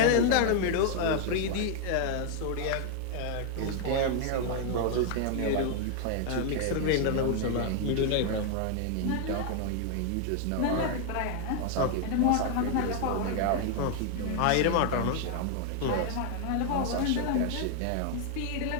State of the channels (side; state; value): both; different; correlation 0.00